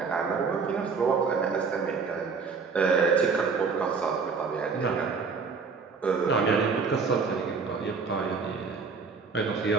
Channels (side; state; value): left; quieter; 5.0 dB